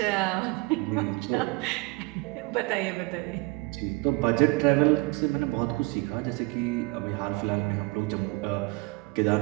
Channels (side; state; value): left; quieter; 25.8 dB